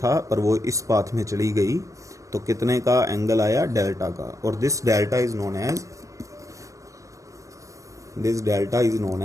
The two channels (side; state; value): left; late; 0.16 ms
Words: पर वो इस पाथ में चली गई, तो कितने का एंगल आया, डेल्टा का। और this delta is known